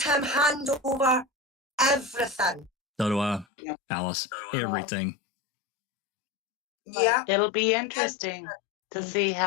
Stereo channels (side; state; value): right; drops out; at 3.5 s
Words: him hand over everything. So do I, Alice. Everything. Yeah. It'll be interesting to see